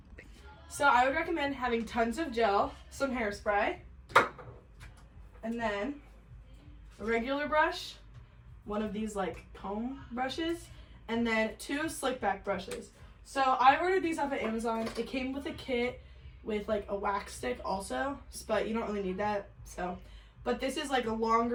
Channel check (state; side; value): identical; both; correlation 1.00